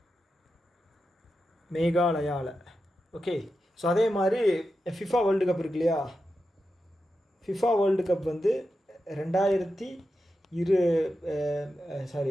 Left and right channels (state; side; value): normal; both; correlation 0.89